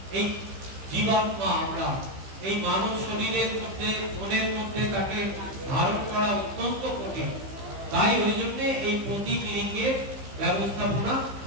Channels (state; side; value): late; left; 15 ms